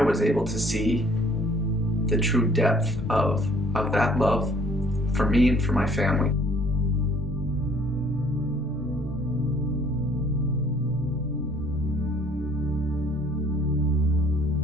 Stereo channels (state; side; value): normal; both; correlation 0.58